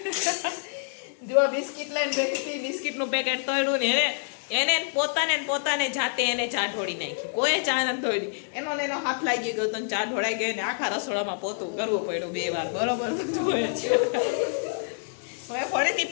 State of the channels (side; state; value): right; silent; 60 dB below the other